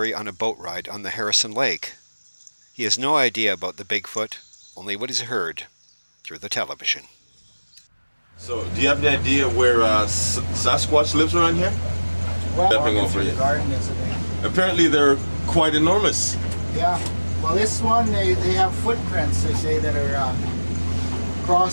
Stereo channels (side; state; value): both; inverted; correlation -1.00